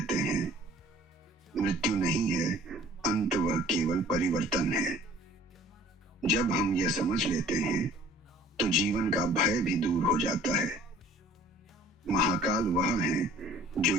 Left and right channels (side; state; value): both; normal; correlation 0.51